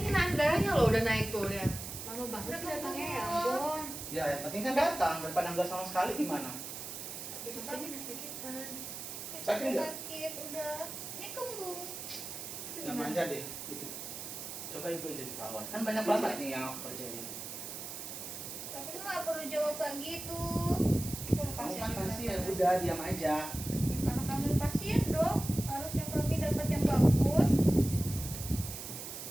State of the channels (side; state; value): right; noise; hiss, 8 dB below the sound